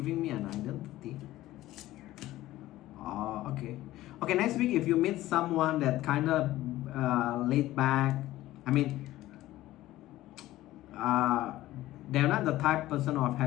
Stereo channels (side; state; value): right; quieter; 15.8 dB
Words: me an identity? Okay. Okay, next week if you meet someone that kind of laid back, I mean, they're not the type person of